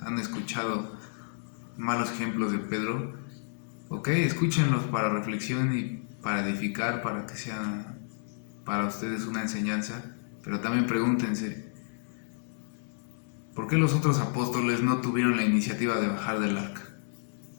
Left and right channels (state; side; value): silent; right; digital silence